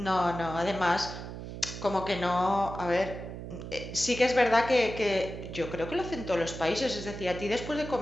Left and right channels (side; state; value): right; noise; hum, 9 dB below the sound